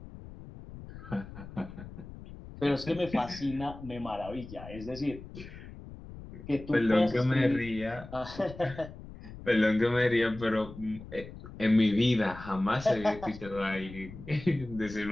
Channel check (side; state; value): left; noise; rumble, 14 dB below the sound